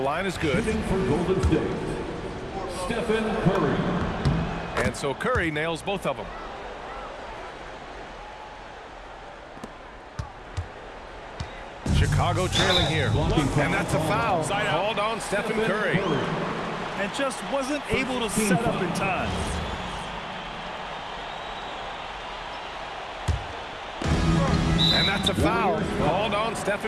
is good. Shooting for Golden State, Stephen Curry. And so Curry nails both of them. Chicago trailing here. And that's a foul. Called on Stephen Curry. And just wasn't able to set up in time. And that's a foul. Called on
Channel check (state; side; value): identical; both; correlation 1.00